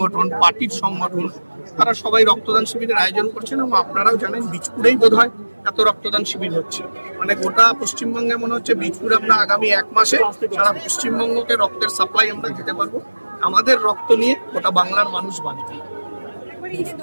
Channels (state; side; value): inverted; both; correlation -1.00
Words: পার্টির সংগঠন তারা সবাই রক্তদান শিবিরের আয়োজন করছেন এবং আপনারাও জানেন বীজপুরেই বোধহয় এত রক্তদান শিবির হচ্ছে। মানে গোটা পশ্চিমবঙ্গে মনে হচ্ছে বীজপুরে আমরা আগামী 1 মাসে সারা পশ্চিমবঙ্গকে রক্তের সাপ্লাই আমরা দিতে পারবো। আমাদের রক্ত নিয়ে গোটা বাংলার মানুষ বাঁচবে।